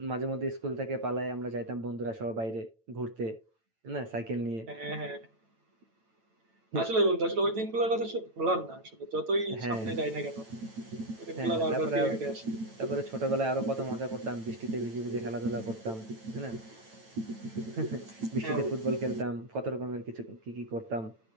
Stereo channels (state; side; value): late; left; 9.0 ms